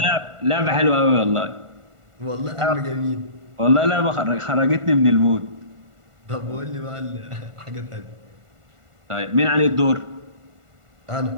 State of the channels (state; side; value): late; left; 1.5 ms